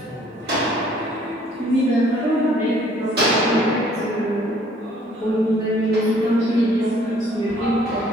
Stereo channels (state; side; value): normal; both; correlation 0.59